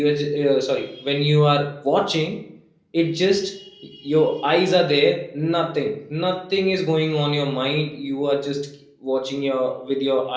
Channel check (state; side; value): identical; both; correlation 1.00